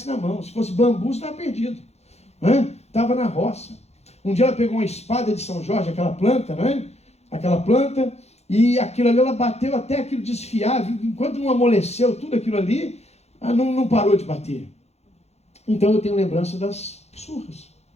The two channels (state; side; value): late; right; 0.31 ms